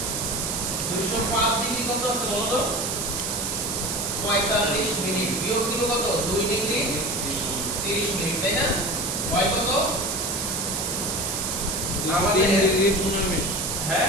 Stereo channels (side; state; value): right; noise; hiss, 1 dB below the sound